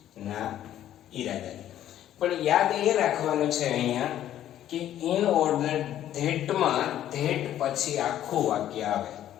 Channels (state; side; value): quieter; right; 11.7 dB